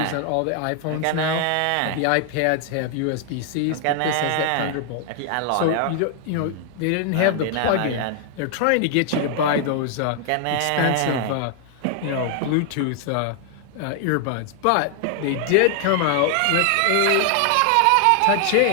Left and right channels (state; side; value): different; both; correlation 0.00